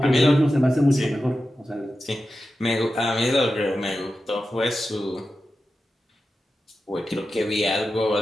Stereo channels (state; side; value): normal; both; correlation 0.92